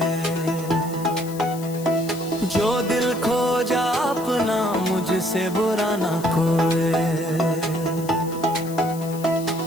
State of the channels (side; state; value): left; noise; hiss, 16 dB below the sound